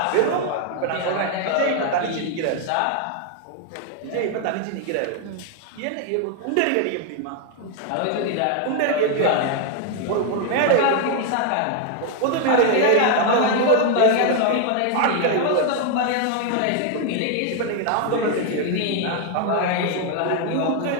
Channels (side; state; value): both; different; correlation 0.00